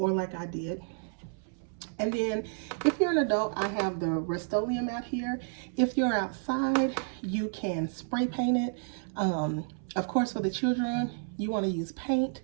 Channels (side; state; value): left; silent; 57 dB below the other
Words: like I did. And then if you're an adult, I have the Rust-Oleum out here. If you're outside, you can spray paint it. Of course, for the children, you want to use paint,